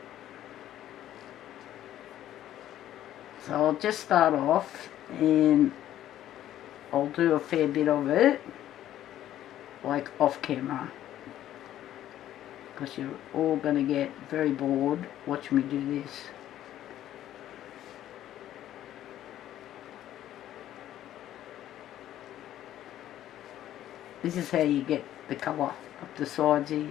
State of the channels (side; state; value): right; quieter; 12.4 dB